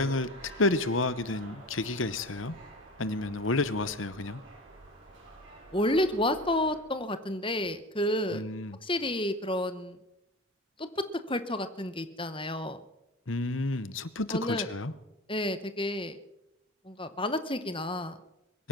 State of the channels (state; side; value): normal; both; correlation 0.34